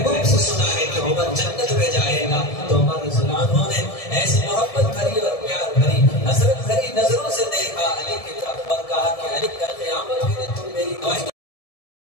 से सुना है कि उमर जन्नत में जाएगा। तो उमर रज़ियल्लाहु अन्हु ने ऐसी मोहब्बत भरी और प्यार भरी, हसरत भरी नजरों से देखा अली की तरफ और कहा कि अली कल क़यामत के दिन तुम मेरी गवाही।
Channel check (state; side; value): late; right; 1.7 ms